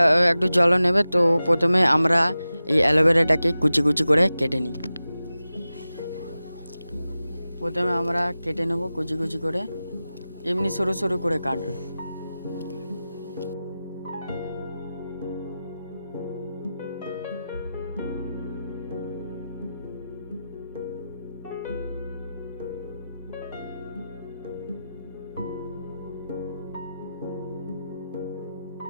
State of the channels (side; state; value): both; inverted; correlation -0.94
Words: একটু জল নেবে। তো প্রথমে আমরা এই অ্যালোভেরাটাকে কুচি কুচি করে কেটে নিই। প্রথমে আমরা কেটে নেব কুচি কুচি করে, এমনি সরু সরু করে কাটবে।